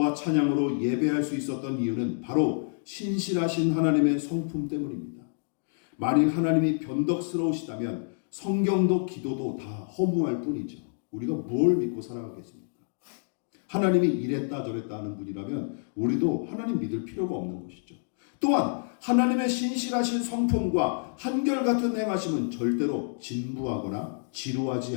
찬양으로 예배할 수 있었던 이유는 바로 신실하신 하나님의 성품 때문입니다. 만일 하나님이 변덕스러우시다면 성경도 기도도 다 허무할 뿐이죠. 우리가 뭘 믿고 살아가겠습니까? 하나님이 이랬다 저랬다 하는 분이라면 우리도 하나님 믿을 필요가 없는 것이죠. 또한 하나님의 신실하신 성품과 한결같은 행하심은 절대로 진부하거나 지루하지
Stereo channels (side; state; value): right; silent; digital silence